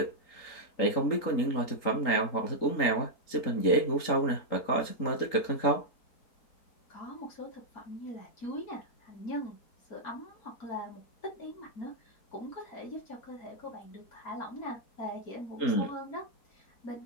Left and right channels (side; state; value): right; late; 3.9 ms